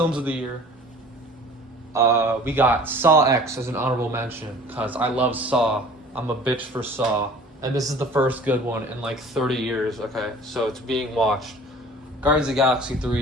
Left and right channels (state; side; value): normal; both; correlation 0.47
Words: of the year. We got Saw X as an honorable mention because I love Saw. I'm a bitch for Saw, and this is the first good one in like 30 years. Okay, so it's being watched. Guardians of the Galaxy